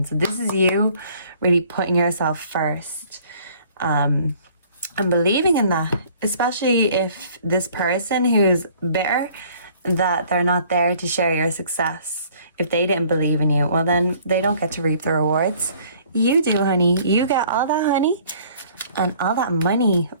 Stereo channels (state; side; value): inverted; both; correlation -0.56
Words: So this is you really putting yourself first, and believing in that, especially if this person who's bitter that they're not there to share your success, if they didn't believe in you, well then they don't get to reap the rewards. You do, honey. You get all that honey and all that money